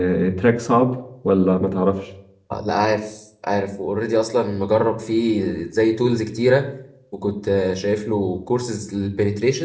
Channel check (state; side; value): identical; both; correlation 1.00